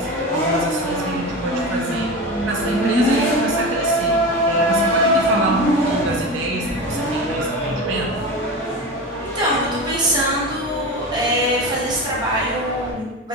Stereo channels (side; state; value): both; normal; correlation 0.25